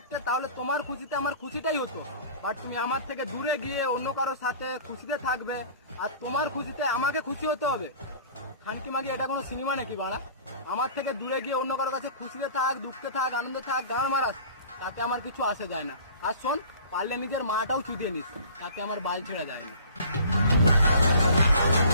তাহলে তোমার খুশিতে আমার খুশিটাই হতো। বাট তুমি আমার থেকে দূরে গিয়ে অন্য কারোর সাথে খুশিতে থাকবে, আর তোমার খুশিতে আমাকে খুশি হতে হবে। খানকি মাগি এটা কোনো সিনেমা নাকি বাড়া? আমার থেকে দূরে গিয়ে অন্য কারোর কাছে খুশিতে থাক, দুঃখে থাক, আনন্দে থাক, গান মারাস, তাতে আমার কিছু আসে যায় না। আর শোন, পারলে নিজের মাটাও চুদিয়ে নিস, তাতে আমার বাল ছেড়া যায় না।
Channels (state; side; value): inverted; both; correlation -0.46